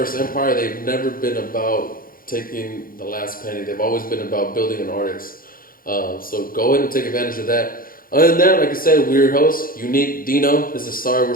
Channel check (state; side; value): late; right; 0.41 ms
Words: Empire, they've never been about taking the last penny. They've always been about building an artist. So go ahead and take advantage of that. Other than that, like I said, we're your host, Uneek, Deeno. This is Sorry We're